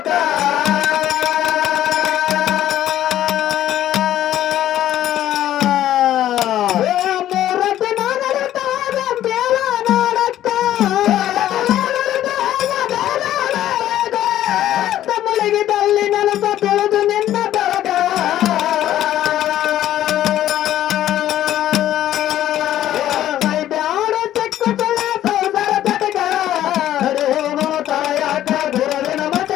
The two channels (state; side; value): quieter; right; 12.5 dB